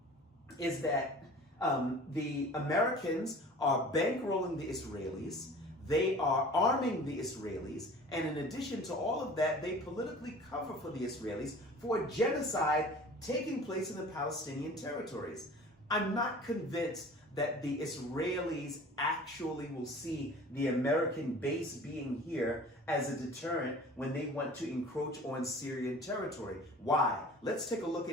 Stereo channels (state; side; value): normal; both; correlation 0.43